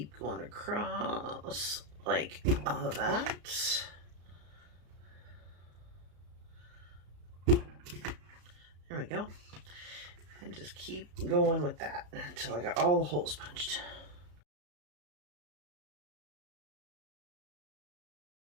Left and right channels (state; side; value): late; left; 34 ms